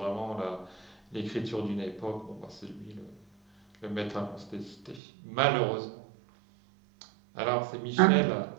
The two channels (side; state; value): left; drops out; at 5.0 s